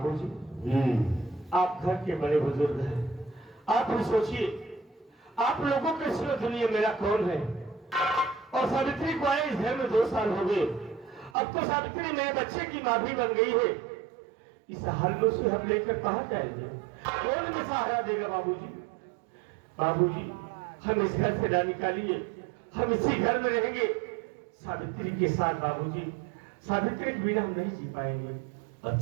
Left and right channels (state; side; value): drops out; left; at 11.4 s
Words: आप घर के बड़े बुजुर्ग हैं, आप भी सोचिए आप लोगों के सिवा दुनिया मेरा कौन है। और सावित्री को आए इस घर में 2 साल हो गए। अब तो सावित्री मेरे बच्चे की माँ भी बन गई है। इस हाल में उसे हम लेकर कहाँ जाएंगे? कौन हमें सहारा देगा बाबूजी? बाबूजी, हम इस घर से ना निकालिए, हम इसी घर में रहेंगे सावित्री के साथ। बाबूजी, सावित्री के बिना हम नहीं जी पाएंगे।